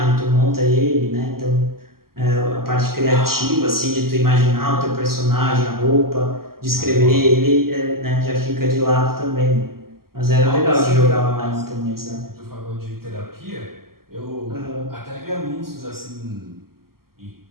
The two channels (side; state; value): left; late; 0.92 ms